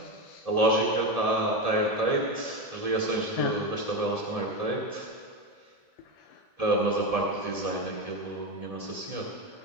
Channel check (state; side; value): late; left; 1.7 ms